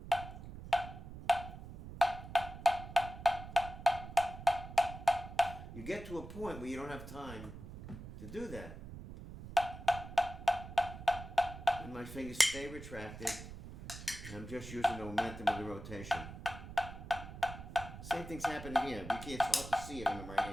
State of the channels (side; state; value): right; noise; rumble, 12 dB below the sound